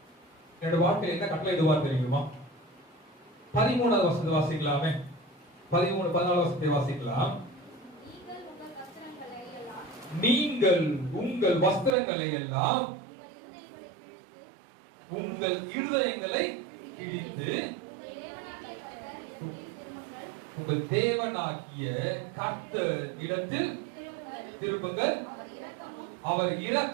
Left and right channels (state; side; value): drops out; left; at 12.0 s